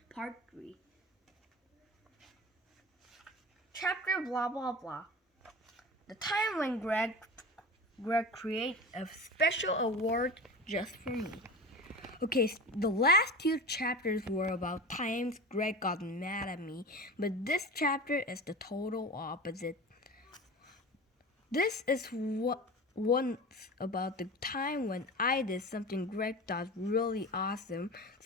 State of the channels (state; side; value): normal; both; correlation 0.31